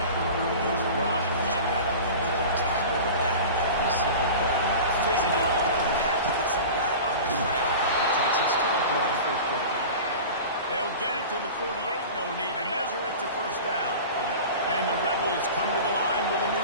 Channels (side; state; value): both; inverted; correlation -0.35